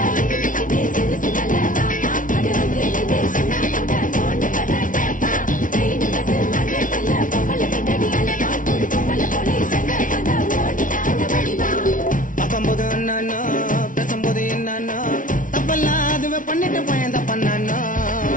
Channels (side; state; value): right; late; 0.38 ms